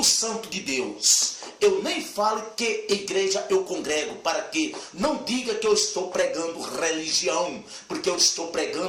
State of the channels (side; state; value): both; identical; correlation 1.00